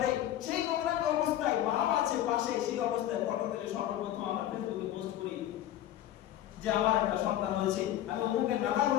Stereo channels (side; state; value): right; quieter; 12.4 dB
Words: সেই নোংরামি অবস্থায় মা আছে পাশে, সেই অবস্থায় ফটো তুলে সর্বপ্রথম আমরা ফেসবুকে পোস্ট করি যে আমার একটা সন্তান হয়েছে, আমি অমুকের দাদা